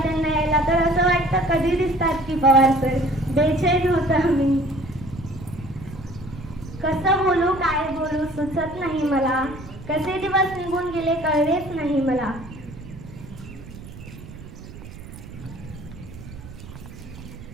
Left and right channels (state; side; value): noise; right; rumble, 15 dB below the sound